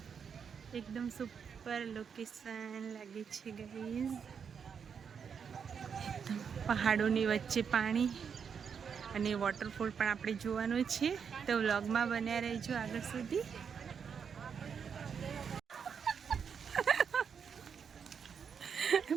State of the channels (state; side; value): quieter; left; 6.8 dB